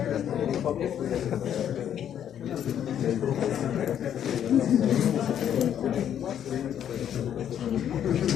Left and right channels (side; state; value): right; quieter; 9.7 dB